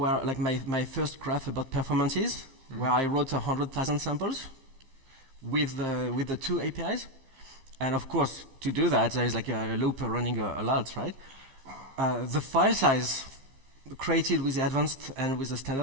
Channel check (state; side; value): late; left; 15 ms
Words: like my first graph about performances, where I wrote 100,000 samples with the two APIs. And of course, to do that, there is like a loop running a lot, right? The file size created with the advanced and with the